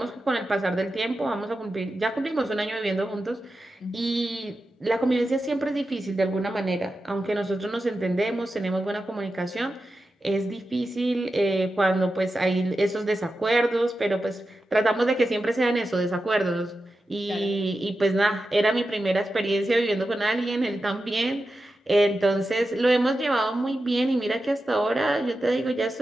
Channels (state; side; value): normal; both; correlation 0.91